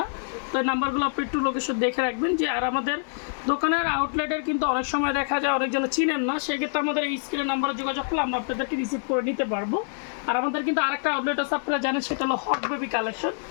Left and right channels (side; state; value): right; silent; digital silence